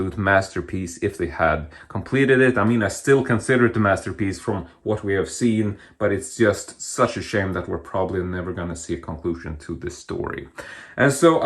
masterpiece if they had completed it. I mean, I still consider it a masterpiece from what we have seen, but it's just such a shame that we're probably never going to see a conclusion to this story. And so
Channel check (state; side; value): identical; both; correlation 1.00